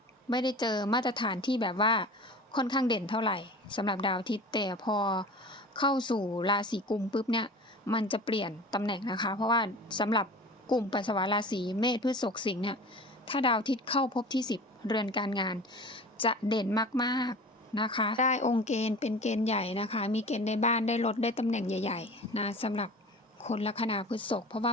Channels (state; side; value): normal; both; correlation 0.38